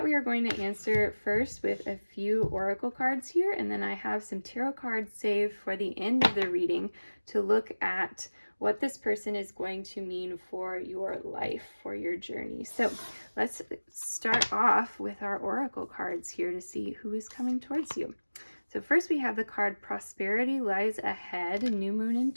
we are going to answer first with a few oracle cards here, and then I have some tarot cards saved for the end of the reading to look at what this person is going to mean for your life, for your journey. So let's start off with our oracle cards here to see who is coming towards you. So first we have the card Prosperity Lies Ahead, New Moon in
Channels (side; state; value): both; inverted; correlation -1.00